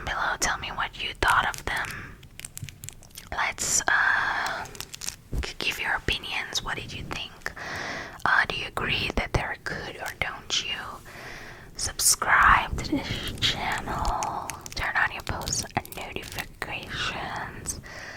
below, tell me what you thought of them. Let's give your opinions. What did you think? Do you agree that they're good, or don't you? Subscribe to this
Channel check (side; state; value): both; identical; correlation 1.00